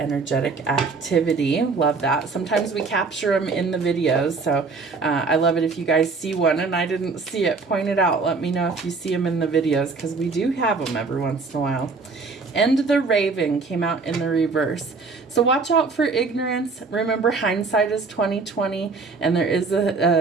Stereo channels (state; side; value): quieter; left; 4.3 dB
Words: activity. Love that. Sometimes we capture them in the videos, so I love it if you guys see one and I didn't see it. Point it out. Let me know if you see them in the videos, because we do have them every once in a while. And the Raven came out in the reverse. So watch out for ignorance. Remember, hindsight is 20/20, and there is